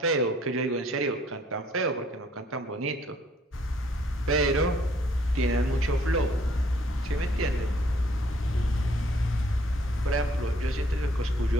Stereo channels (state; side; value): normal; both; correlation 0.62